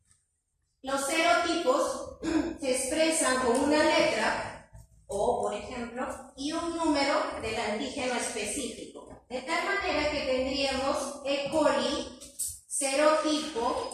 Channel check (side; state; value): both; identical; correlation 1.00